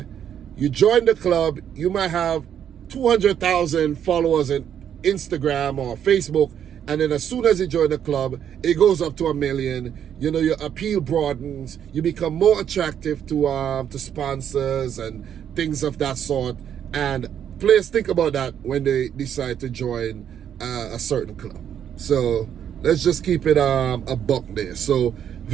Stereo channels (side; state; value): left; quieter; 9.2 dB